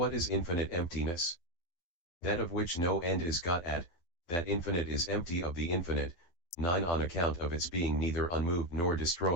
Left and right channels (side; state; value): right; late; 12 ms